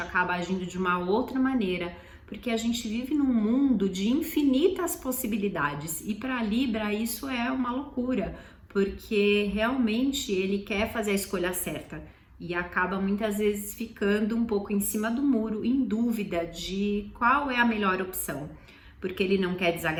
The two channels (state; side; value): identical; both; correlation 1.00